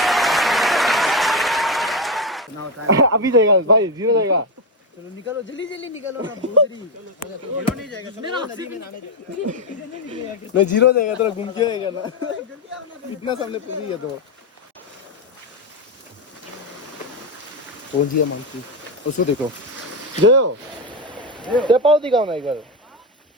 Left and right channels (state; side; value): normal; both; correlation 0.09